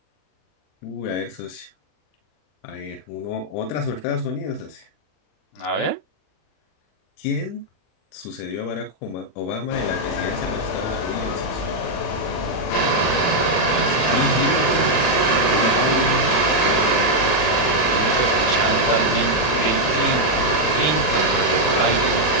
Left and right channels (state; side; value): late; right; 40 ms